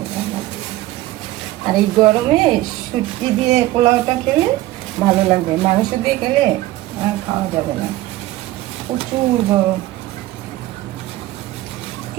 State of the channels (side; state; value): left; quieter; 16.4 dB